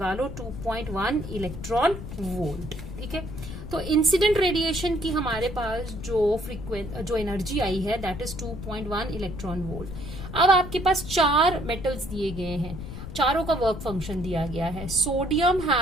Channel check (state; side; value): noise; left; rumble, 9 dB below the sound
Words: लो 2.1 इलेक्ट्रॉन वोल्ट। ठीक है, तो इंसिडेंट रेडिएशन की हमारे पास जो एनर्जी आई है दैट इज 2.1 इलेक्ट्रॉन वोल्ट। अब आपके पास 4 मेटल्स दिए गए हैं, चारों का वर्क फंक्शन दिया गया है। Sodium